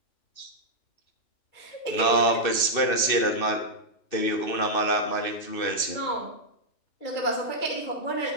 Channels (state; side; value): late; right; 2.6 ms